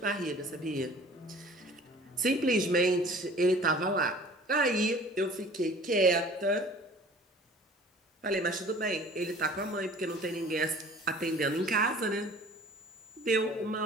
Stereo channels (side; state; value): both; normal; correlation 0.47